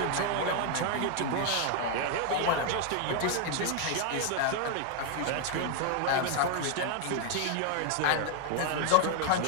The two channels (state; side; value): different; both; correlation 0.00